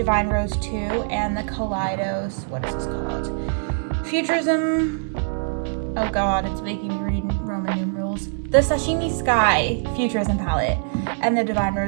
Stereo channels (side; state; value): left; silent; digital silence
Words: Rose 2 and the Kaleidos, what is this called? Futurism, oh god, it's making me read Roman numerals. The Sashimi Sky Futurism palette and the Divine